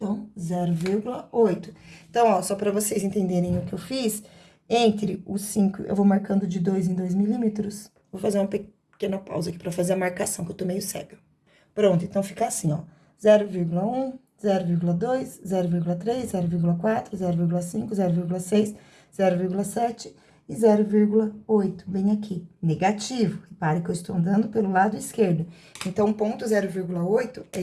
0,8. Então, ó, só para vocês entenderem o que eu fiz, entre os 5, eu vou marcando de 2 em 2 milímetros. Vou fazer uma pequena pausa aqui para fazer a marcação, que eu tô meio cega. Pronto, então fica assim, ó, 0,1, 0,2, 0,3, 0,4, 0,5, 0,6, 0,7 e 0,8, bem aqui, negativo. Repare que eu estou andando pelo lado esquerdo. Então, o ponto 0,8 é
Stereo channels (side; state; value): both; identical; correlation 1.00